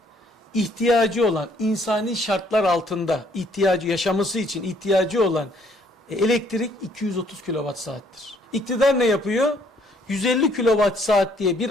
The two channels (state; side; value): normal; both; correlation 0.64